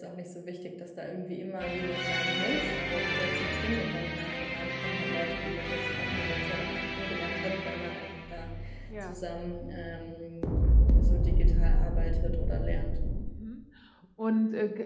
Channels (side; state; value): both; identical; correlation 1.00